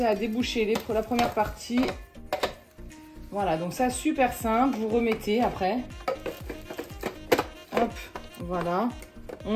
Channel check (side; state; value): both; identical; correlation 1.00